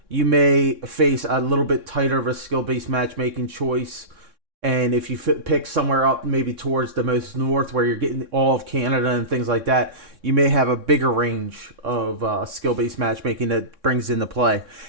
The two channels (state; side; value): late; left; 3.6 ms